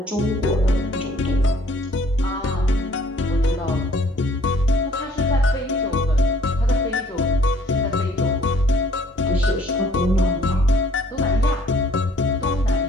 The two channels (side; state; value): both; normal; correlation 0.58